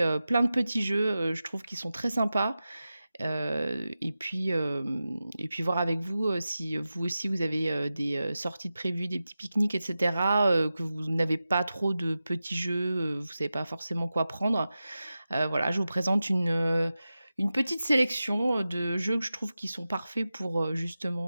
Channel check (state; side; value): inverted; both; correlation -0.93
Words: plein de petits jeux, je trouve qu'ils sont très sympas. Et puis voir avec vous, si vous aussi vous avez, des, sorties de prévues, des petits pique-niques et cetera, que vous n'avez pas trop de petits jeux, vous savez pas forcément quoi prendre. Voilà, je vous présente une petite sélection, de jeux que je trouve qui sont parfaits pour,